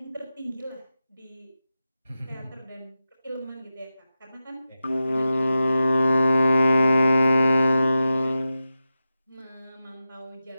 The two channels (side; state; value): both; inverted; correlation -0.93